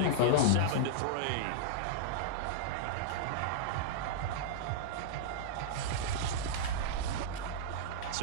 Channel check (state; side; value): different; both; correlation -0.02